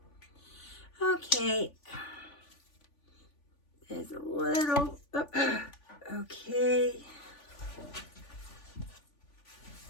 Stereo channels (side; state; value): right; late; 3.5 ms